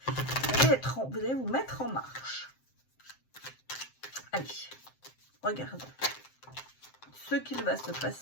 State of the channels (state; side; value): late; right; 7.7 ms